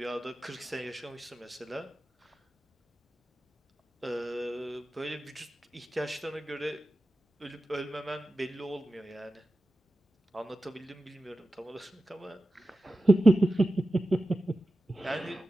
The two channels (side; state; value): both; normal; correlation 0.93